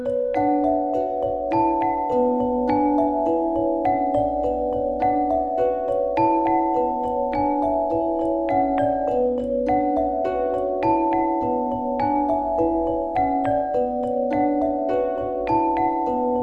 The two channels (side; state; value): both; identical; correlation 1.00